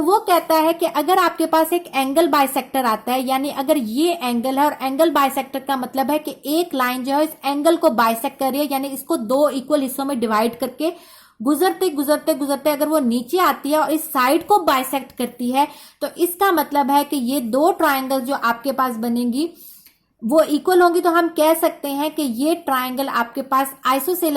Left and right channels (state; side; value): identical; both; correlation 1.00